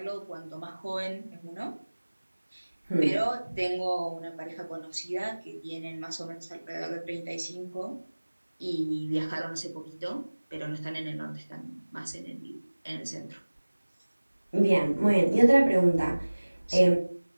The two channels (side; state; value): both; inverted; correlation -1.00